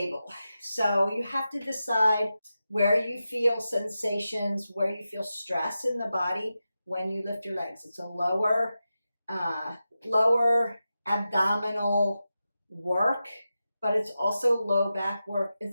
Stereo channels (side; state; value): both; inverted; correlation -0.91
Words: So you have to decide where you feel sensations, where you feel stress in the body when you lift your legs. It's a lower abdominal work, but it's also low back work.